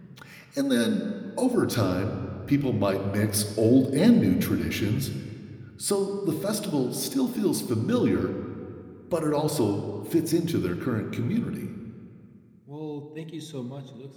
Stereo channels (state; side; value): identical; both; correlation 1.00